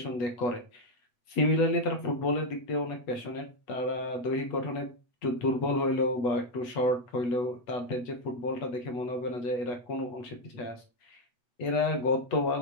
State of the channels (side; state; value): right; late; 8.3 ms